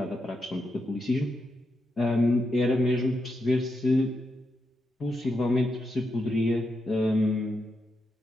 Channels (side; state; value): both; normal; correlation 0.85